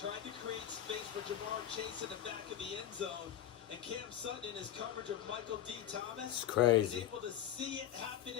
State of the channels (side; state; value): right; quieter; 11.0 dB